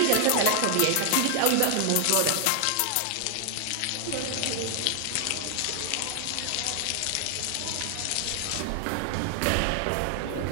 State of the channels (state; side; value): different; both; correlation 0.00